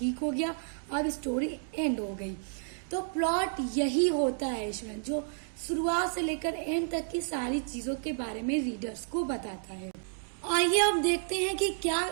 हो गया, अब स्टोरी एंड हो गई। तो प्लॉट यही होता है इसमें, जो शुरुआत से लेकर एंड तक की सारी चीजों के बारे में रीडर्स को बताता है। आइए अब देखते हैं कि क्या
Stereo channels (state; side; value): silent; left; digital silence